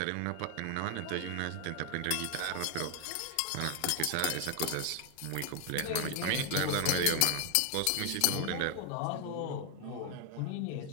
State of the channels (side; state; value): both; different; correlation 0.00